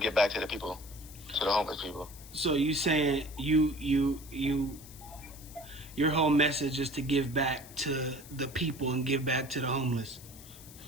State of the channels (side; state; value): left; noise; hiss, 18 dB below the sound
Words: to get back to the people, to the homeless people. So you saying your whole message is to give back to the people and give back to the homeless.